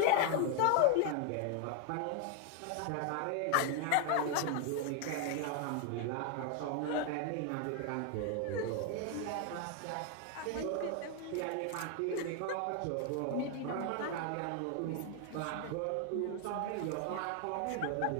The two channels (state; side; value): different; both; correlation 0.00